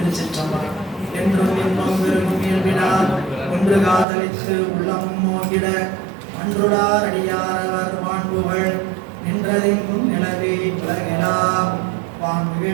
என்றும் இன்னும் விரும்பும் இயல்பினார் ஒன்று காதலித்து உள்ளமும் மோகிட அன்றுடார் அடியாரவர் வான்புகள் நின்றதெங்கும் நிலவே உலகெலாம்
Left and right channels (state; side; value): drops out; left; at 4.0 s